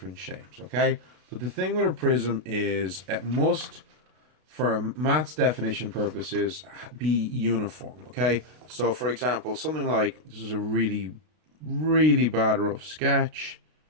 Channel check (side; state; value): left; late; 33 ms